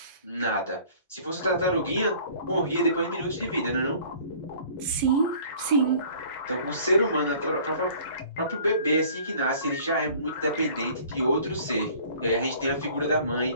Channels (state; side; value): inverted; both; correlation -0.51